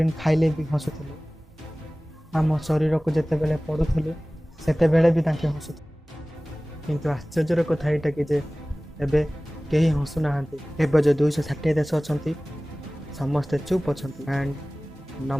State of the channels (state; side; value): normal; both; correlation 0.98